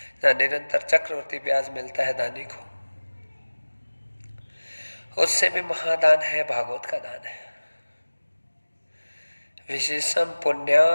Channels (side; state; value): both; inverted; correlation -1.00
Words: जहाँ निरंतर चक्रवर्ती ब्याज मिलता है दानी को। उससे भी महादान है भागवत का दान है। विशेषम